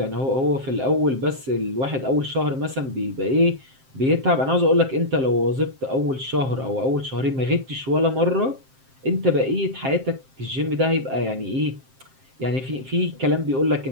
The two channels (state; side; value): late; left; 7.6 ms